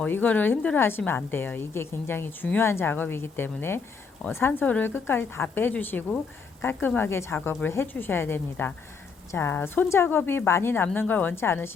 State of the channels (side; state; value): right; quieter; 5.2 dB